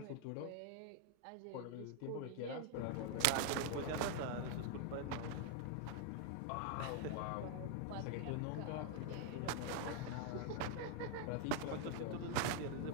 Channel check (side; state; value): both; different; correlation 0.00